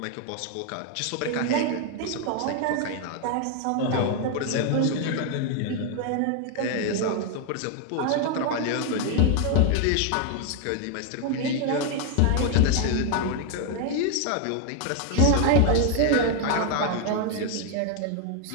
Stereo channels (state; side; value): different; both; correlation 0.00